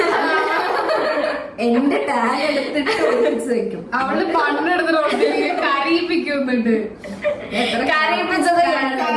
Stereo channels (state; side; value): identical; both; correlation 1.00